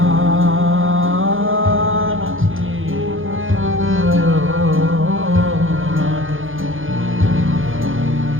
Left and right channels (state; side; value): late; left; 0.58 ms